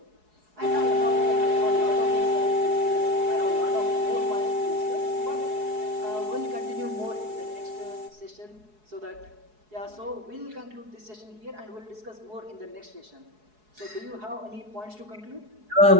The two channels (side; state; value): left; late; 4.7 ms